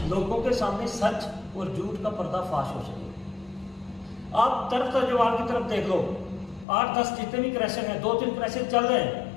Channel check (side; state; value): right; drops out; at 6.7 s